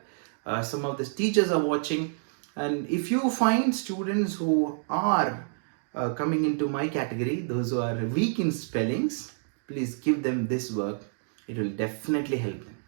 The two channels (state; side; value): silent; left; digital silence